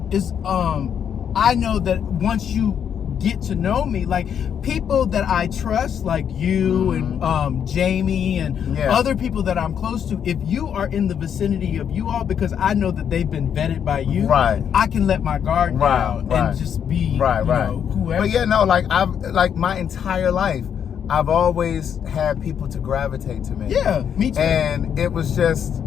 it's, I know that once you get to know me, like people that I trust, like you and Jamie and other people that I'm close to, if you are in the vicinity of you all, because I know that they've been vetted by you, I can let my guard down and just be you know, whoever. But I've my entire life, I've always had people to gravitate to me. Me too. And it was just,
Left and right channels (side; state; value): right; quieter; 8.3 dB